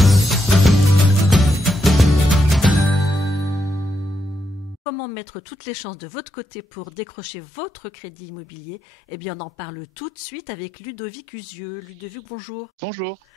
Comment mettre toutes les chances de votre côté pour décrocher votre crédit immobilier? Eh bien, on en parle tout de suite avec Ludovic Usieux. Ludovic, bonjour. Bonjour.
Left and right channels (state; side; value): normal; both; correlation 0.82